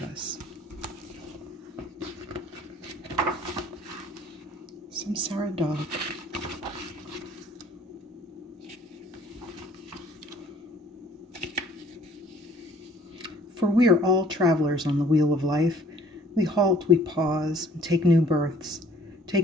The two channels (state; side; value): normal; both; correlation 0.56